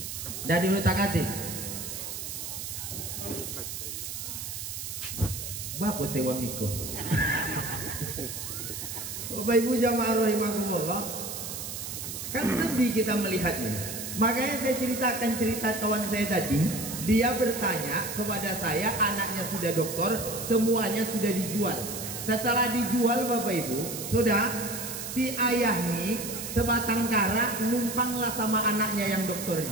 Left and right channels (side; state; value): right; noise; hiss, 7 dB below the sound